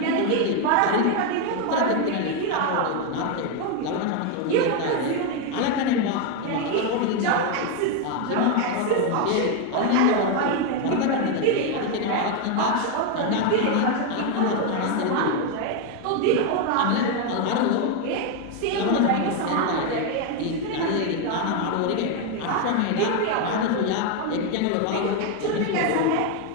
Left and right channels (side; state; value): both; different; correlation 0.01